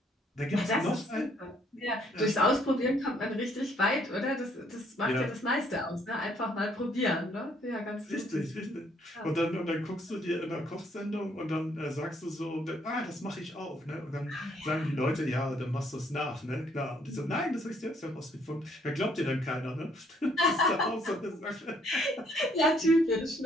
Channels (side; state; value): both; normal; correlation 0.66